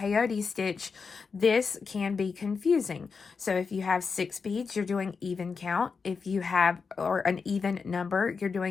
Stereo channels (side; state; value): right; quieter; 5.2 dB